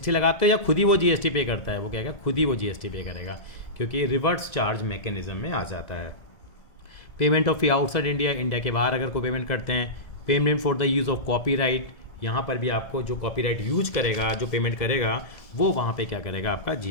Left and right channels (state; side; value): late; right; 1.7 ms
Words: लगाते हो, या खुद ही वो जीएसटी पे करता है? वो कहेगा खुद ही वो जीएसटी पे करेगा, क्योंकि रिवर्स चार्ज मैकेनिज्म में आ जाता है। Payment of fee outside India, India के बाहर अगर कोई पेमेंट करते हैं। Payment for the use of copyright, यहाँ पर भी आपको जो कॉपीराइट यूज करेगा, जो पेमेंट करेगा, वो वहाँ पे क्या करेगा, आपका